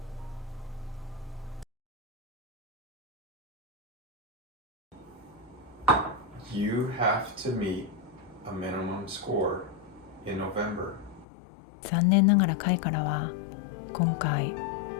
You have to meet a minimum score in November. 残念ながら会からは今回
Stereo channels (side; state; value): right; drops out; at 11.2 s